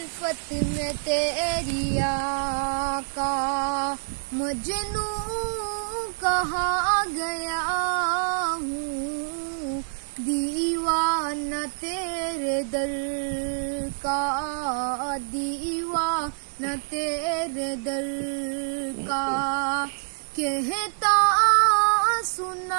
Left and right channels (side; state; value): left; silent; 61 dB below the other